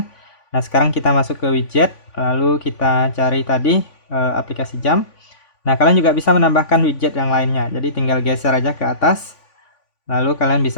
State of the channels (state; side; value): late; right; 3.5 ms